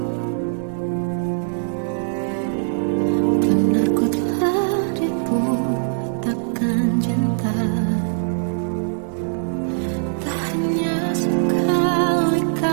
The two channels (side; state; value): left; silent; 65 dB below the other